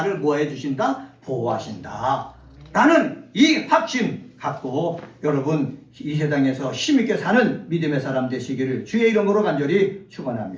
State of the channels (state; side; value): identical; both; correlation 1.00